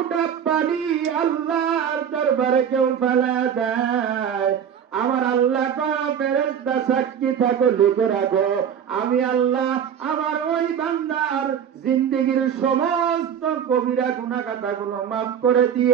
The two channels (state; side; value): quieter; left; 8.3 dB